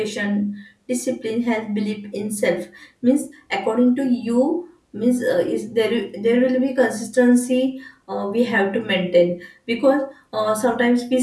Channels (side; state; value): both; identical; correlation 1.00